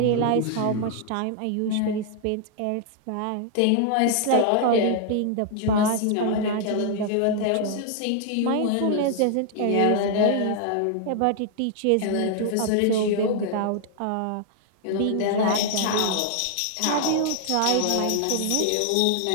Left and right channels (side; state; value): both; different; correlation 0.00